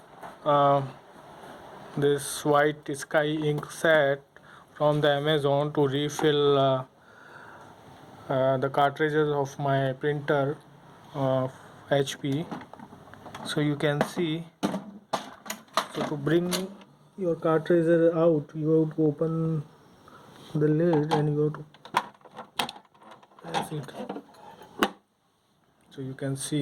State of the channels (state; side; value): identical; both; correlation 1.00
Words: uh, this white sky ink set from the Amazon to refill the cartridges of my printer of HP. So you can see. So to bring your cartridge out, you have to open the lid and you have to press it. So you can